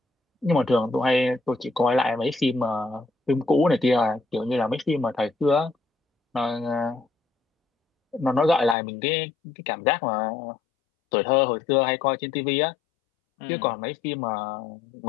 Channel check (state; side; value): drops out; right; at 8.8 s